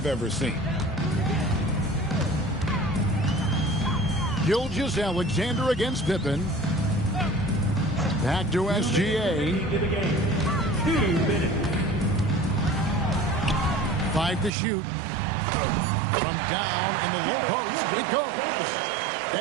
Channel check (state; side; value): drops out; left; at 14.5 s